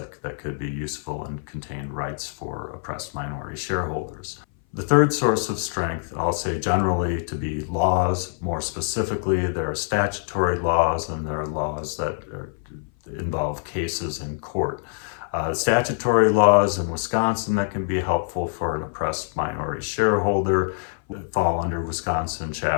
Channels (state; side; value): silent; right; 58 dB below the other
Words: could be useful and contain rights for oppressed minority shareholders. The third source of strength, I'll say generally to be laws. More specifically, there are statutory laws and there are laws that involve cases in court. Statutory laws in Wisconsin that can be helpful for an oppressed minority shareholder fall under Wisconsin